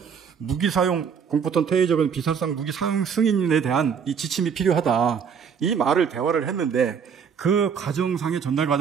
무기 사용 공포탄 테이저건 비살상 무기 사용 승인에 대한 이 지침이 필요하다. 이 말을 대화를 했는데 그 과정상의 전달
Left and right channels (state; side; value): quieter; left; 6.9 dB